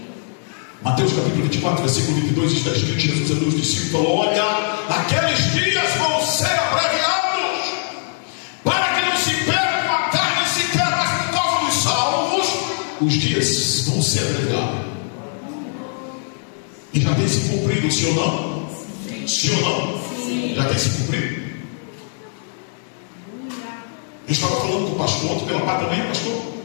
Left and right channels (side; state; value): right; silent; digital silence